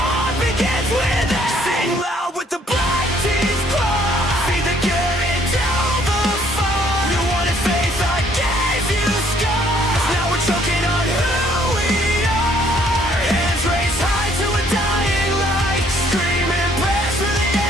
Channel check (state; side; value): normal; both; correlation 0.63